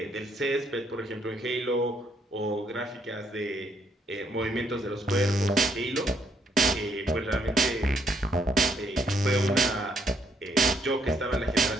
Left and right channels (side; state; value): both; normal; correlation 0.71